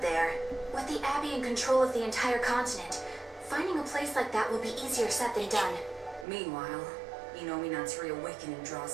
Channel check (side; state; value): left; drops out; at 6.2 s